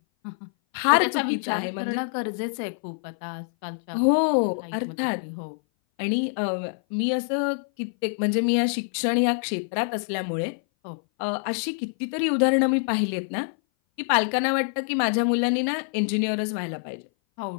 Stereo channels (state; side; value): silent; right; 58 dB below the other